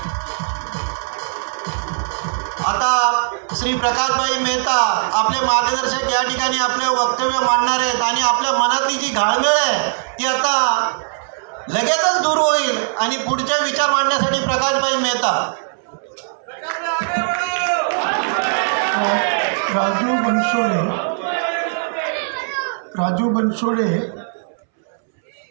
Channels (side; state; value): left; silent; 66 dB below the other